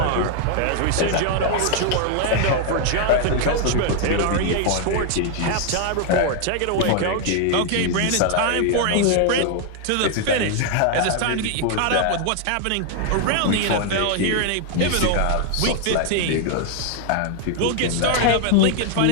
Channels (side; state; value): both; different; correlation 0.00